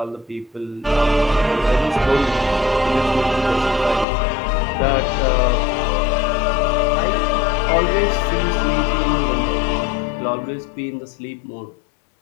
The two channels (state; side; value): drops out; right; at 4.0 s